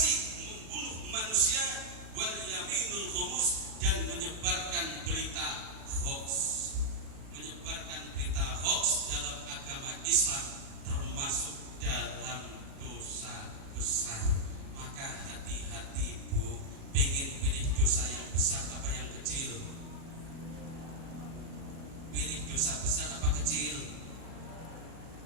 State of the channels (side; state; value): left; late; 37 ms